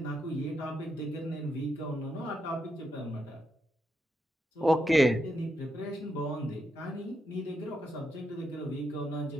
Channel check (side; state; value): both; normal; correlation 0.82